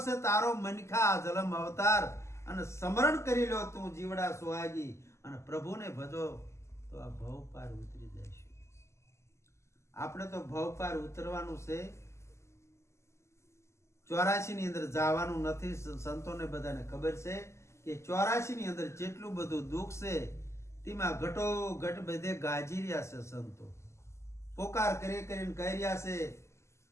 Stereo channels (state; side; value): late; right; 0.13 ms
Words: છે તારો મનખા જલમ અવતાર અને સ્મરણ કરી લો તું જીવડા સુહાગી અને પ્રભુને ભજો તો આ ભવ પાર ઉતરી જઈશું. આપણે તો ભવ પાર ઉતરવાનું છે. 84 ની અંદર જવાનું નથી. સંતોને બધાને ખબર છે કે 84 ની અંદર જેટલું બધું દુઃખ છે તેમાં ઘટો ઘટ બધે ગાજી રહ્યા છે. સંતો પોકાર કરી કરીને કહી રહ્યા છે